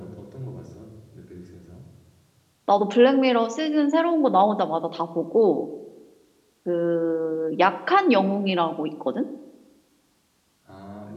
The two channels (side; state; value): both; identical; correlation 1.00